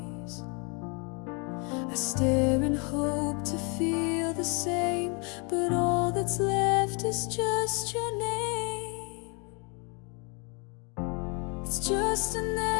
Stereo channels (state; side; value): quieter; right; 34.1 dB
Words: I stare and hope to feel the same, but all that's left is just your name. It's just an